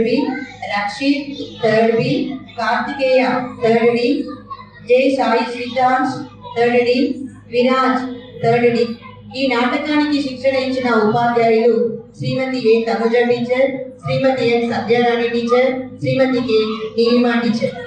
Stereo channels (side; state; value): both; identical; correlation 1.00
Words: బి, రక్షిత్ థర్డ్ బి, కార్తికేయ థర్డ్ డి, జై సాయి సిద్ధాంశ్ థర్డ్ డి, విరాజ్ థర్డ్ డి. ఈ నాటకానికి శిక్షణ ఇచ్చిన ఉపాధ్యాయులు శ్రీమతి ఏ తనుజ టీచర్, శ్రీమతి ఎన్ సత్యరాణి టీచర్, శ్రీమతి కె నీలిమా టీచర్.